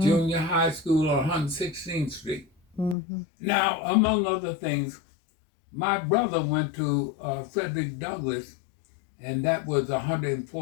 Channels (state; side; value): drops out; right; at 3.0 s